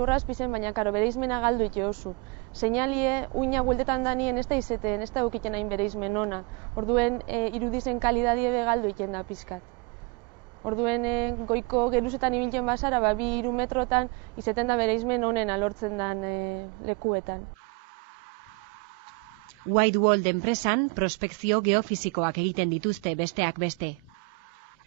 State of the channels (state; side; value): quieter; left; 30.1 dB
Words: baina bere izmena galdu ite oso. Seinalie, uina bueltetan danien ez da izeten, ez da eukiten hain bere izmen ona. Orduen irudizen kalidadie galdu iten da pizkat. Orduen goiko geruzetan ibiltzen basara, 2-3 metrotan izeten da bere izmen onena lortzen dan lekuetan. Whiteworld enpresan prospekzio geofisikoak egiten dituzte besteak beste.